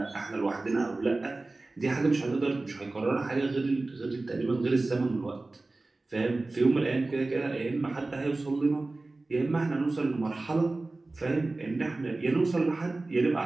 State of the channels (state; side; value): quieter; left; 3.2 dB